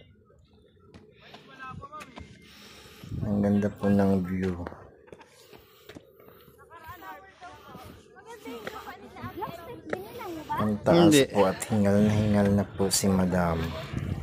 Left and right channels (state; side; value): identical; both; correlation 1.00